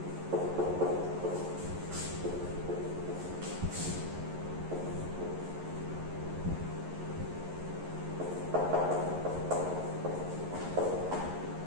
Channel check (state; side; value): late; left; 11 ms